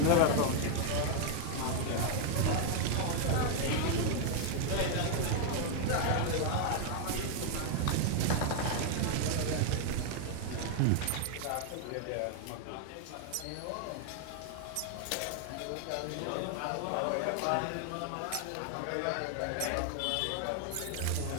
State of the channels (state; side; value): different; both; correlation 0.00